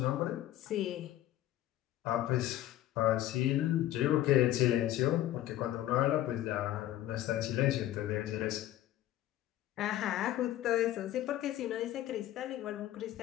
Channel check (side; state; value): right; quieter; 13.8 dB